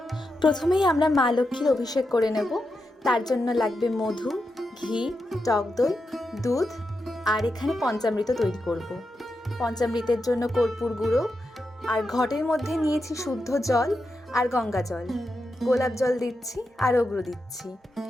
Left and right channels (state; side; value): normal; both; correlation 0.87